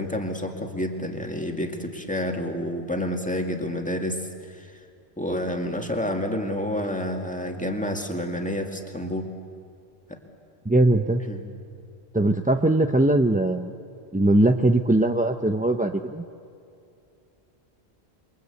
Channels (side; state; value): both; normal; correlation 0.61